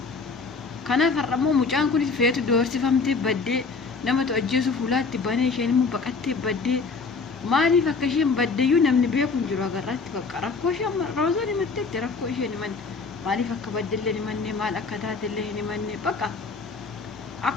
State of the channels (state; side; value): quieter; right; 4.5 dB